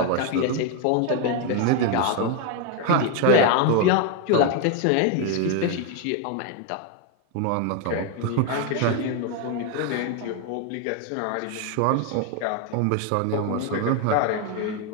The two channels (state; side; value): different; both; correlation 0.01